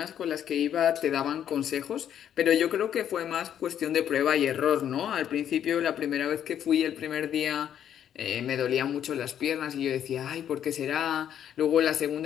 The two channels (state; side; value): quieter; right; 9.7 dB